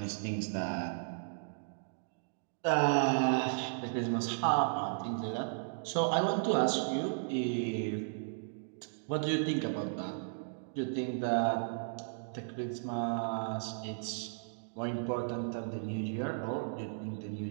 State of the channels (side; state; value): left; silent; digital silence